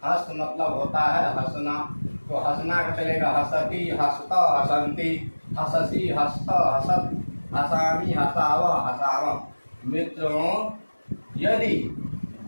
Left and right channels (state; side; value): inverted; both; correlation -1.00